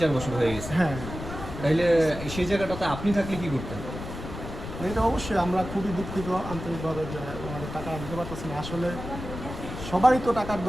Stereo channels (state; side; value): noise; left; rumble, 9 dB below the sound